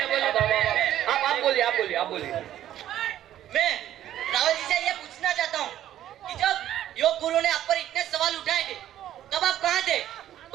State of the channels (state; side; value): quieter; left; 12.0 dB